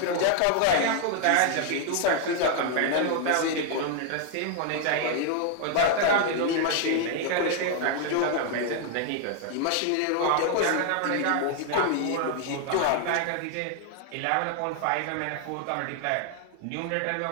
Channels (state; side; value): different; both; correlation 0.00